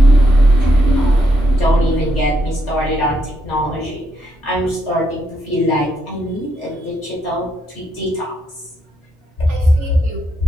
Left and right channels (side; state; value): both; normal; correlation 0.79